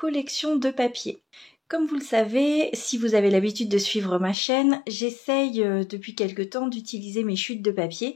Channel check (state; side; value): drops out; right; at 4.4 s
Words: de papier. Comme vous le savez, si vous avez l'habitude de suivre ma chaîne, j'essaye depuis quelque temps d'utiliser mes chutes de